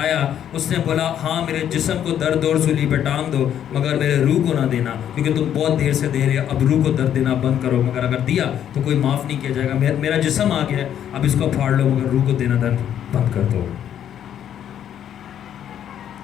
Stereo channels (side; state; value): right; quieter; 9.9 dB